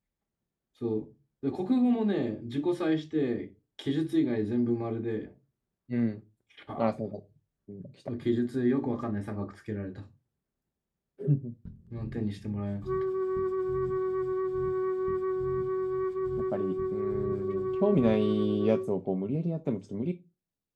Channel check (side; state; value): both; identical; correlation 1.00